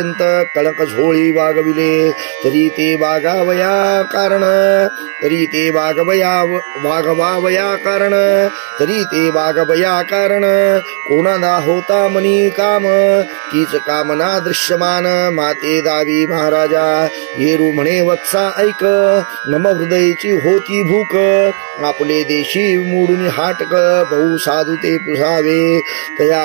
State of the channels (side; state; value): left; silent; digital silence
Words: कळक झोळी वागविले तरी ते वागावया कारण. तरी ते वागवावया कारण. तरी ते वागवया कारण. कोणाला होता मनी काम तीच कामना दृश्यमान. माते दावी महाराजा येरू म्हणे वत्सा ऐक. नम हृदयची होती भूक. आपले देशी मोडून हाटक बहु साधू ते पुसावे.